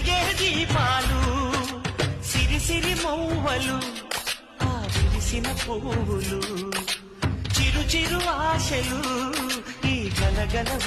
దీపాలు సిరి సిరి మౌవలు ఆ విరిసిన పువ్వులు చిరు చిరు ఆశలు ఈ గలగల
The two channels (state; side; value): identical; both; correlation 1.00